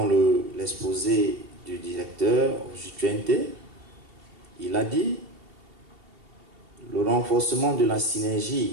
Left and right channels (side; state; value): left; late; 2.8 ms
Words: l'exposé du directeur Jutuente, il a dit Le renforcement de la